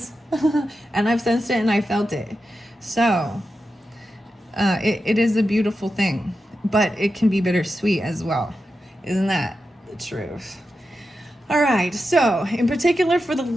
And I've sensed it and I felt it. So it is a beautiful thing, but it can be bittersweet as well. Isn't that the truth? All right, so in particular for the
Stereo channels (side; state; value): both; normal; correlation 0.90